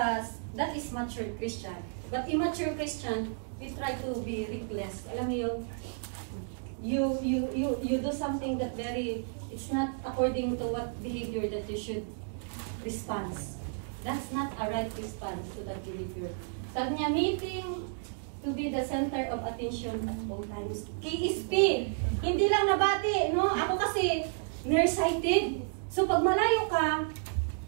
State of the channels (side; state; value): left; silent; digital silence